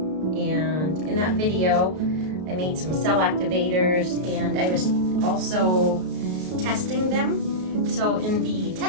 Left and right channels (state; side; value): late; left; 33 ms